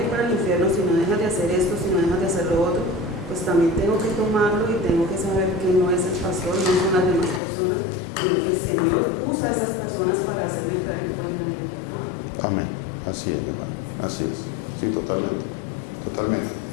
ir para el infierno si no dejas de hacer esto, si no dejas de hacer lo otro, pues también tengo que tomarlo y tengo que saber que no es el pastor, no son las demás personas, sino que el Señor usa a esas personas para hacerme caer en cuenta en el pecado. Amén. Así es, mi hermano. Así es. Sí, totalmente. Totalmente.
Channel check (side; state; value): right; drops out; at 7.4 s